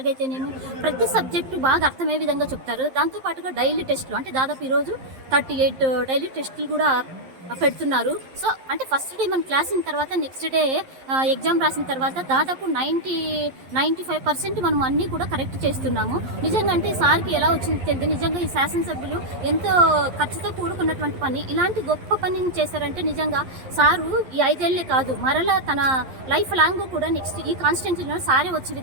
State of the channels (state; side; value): late; left; 11 ms